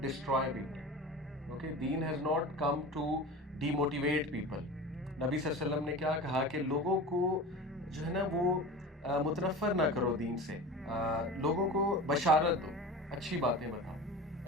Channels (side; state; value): both; normal; correlation 0.33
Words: destroy people. Okay, دین has not come to demotivate people. نبی صلی اللہ علیہ وسلم نے کیا کہا کہ لوگوں کو جو ہے نا وہ متنفر نہ کرو دین سے، لوگوں کو بشارت دو، اچھی باتیں بتاؤ.